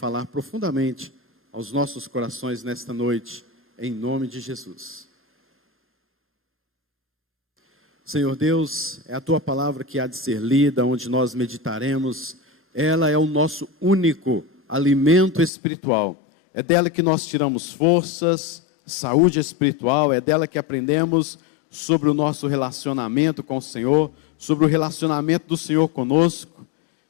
profundamente aos nossos corações nesta noite, em nome de Jesus. Senhor Deus, é a Tua palavra que há de ser lida, onde nós meditaremos. Ela é o nosso único alimento espiritual. É dela que nós tiramos forças, saúde espiritual. É dela que aprendemos sobre o nosso relacionamento com o Senhor, sobre o relacionamento do Senhor conosco.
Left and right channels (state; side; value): drops out; right; at 15.5 s